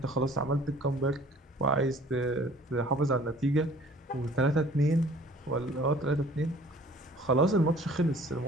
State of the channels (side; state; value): both; normal; correlation 0.52